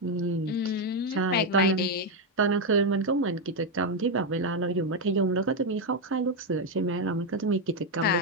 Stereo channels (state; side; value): normal; both; correlation 0.04